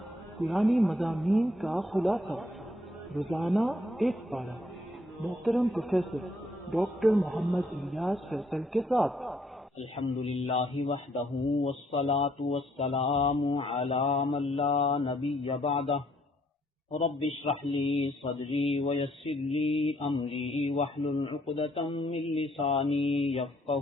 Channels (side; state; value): both; normal; correlation 0.69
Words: پرانی مضامین کا خلاصہ، روزانہ ایک پارہ، محترم پروفیسر ڈاکٹر محمد الیاس فیصل کے ساتھ۔ الحمدللہ وحدہ والصلاة والسلام علی من لا نبی بعدہ، رب اشرح لی صدری ویسر لی امری واحلل عقدۃ من لسانی